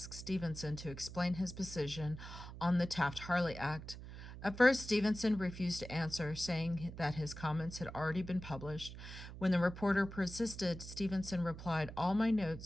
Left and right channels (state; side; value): noise; right; hum, 12 dB below the sound